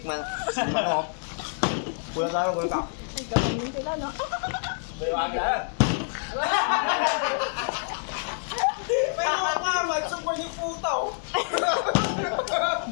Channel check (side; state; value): right; silent; digital silence